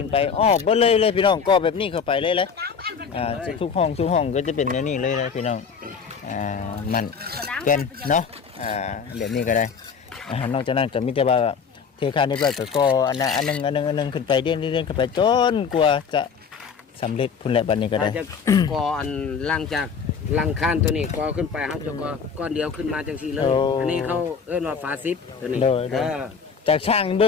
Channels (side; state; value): right; quieter; 6.1 dB